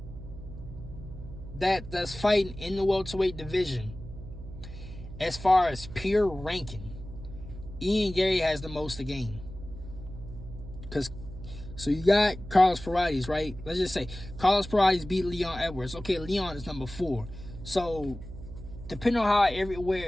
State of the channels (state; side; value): noise; right; hum, 13 dB below the sound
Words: fighting in the welterweight division, as far as pure ranking, Ian Gary has the most to gain. So you got Carlos Paredes, right? Let's just say Carlos Paredes beat Leon Edwards. Okay, Leon is number 4. So depending on how